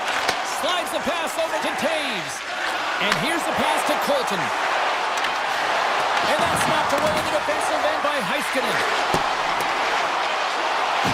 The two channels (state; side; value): identical; both; correlation 1.00